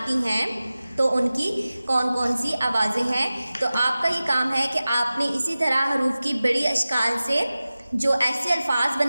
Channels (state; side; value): inverted; both; correlation -0.96